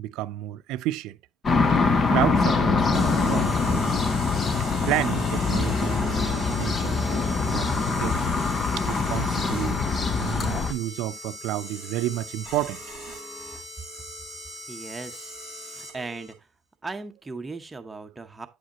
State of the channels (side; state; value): both; normal; correlation 0.65